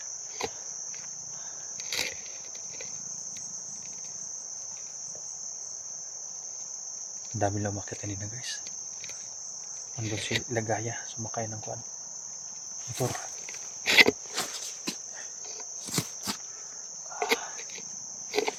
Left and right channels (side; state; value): both; identical; correlation 1.00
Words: Ang dami lang umakyat kanina guys. Andun si Lagaya, sumakay ng kuan motor.